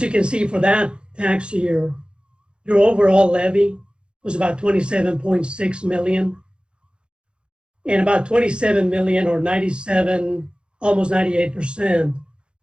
you can see, for that tax year, your overall levy was about 27.6 million. And about 27 million, or 97, almost 98%,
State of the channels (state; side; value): late; left; 0.054 ms